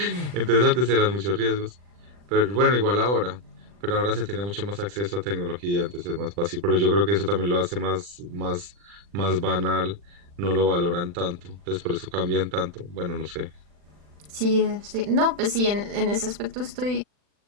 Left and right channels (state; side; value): late; left; 40 ms